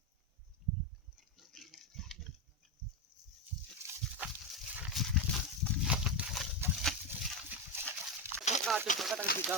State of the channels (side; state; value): both; normal; correlation 0.11